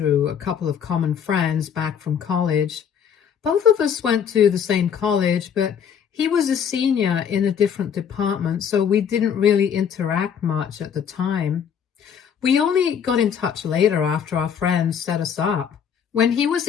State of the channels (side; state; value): right; quieter; 7.8 dB